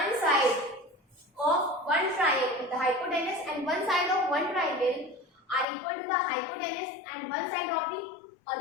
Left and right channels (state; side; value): drops out; right; at 5.7 s